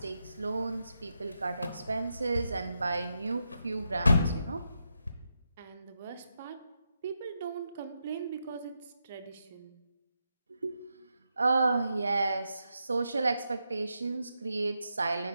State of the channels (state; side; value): inverted; both; correlation -0.85